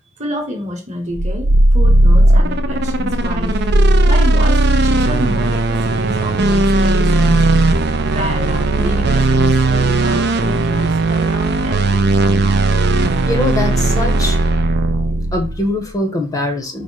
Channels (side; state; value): both; normal; correlation 0.76